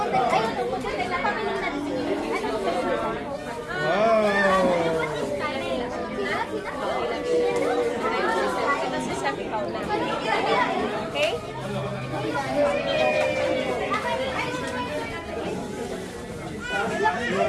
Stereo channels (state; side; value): identical; both; correlation 1.00